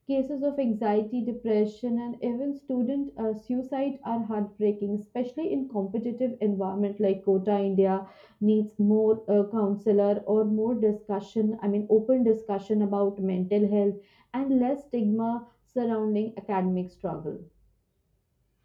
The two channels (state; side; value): identical; both; correlation 1.00